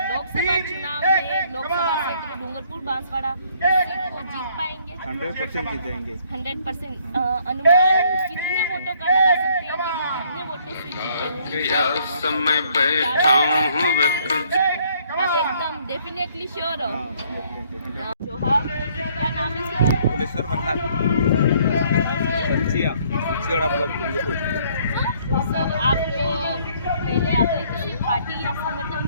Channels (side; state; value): both; inverted; correlation -0.64